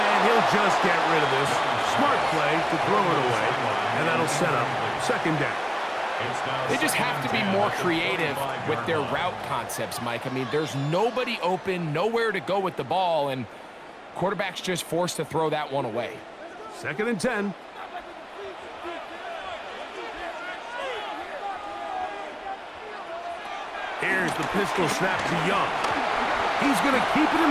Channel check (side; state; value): both; identical; correlation 1.00